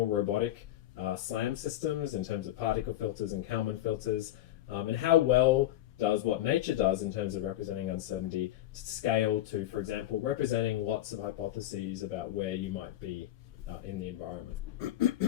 robotic SLAM systems in terms of particle filters and Kalman filters? And how well does what nature does in terms of representing uncertainty scale to, for example, representing lots of hypotheses about where you might be in the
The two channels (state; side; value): quieter; right; 13.7 dB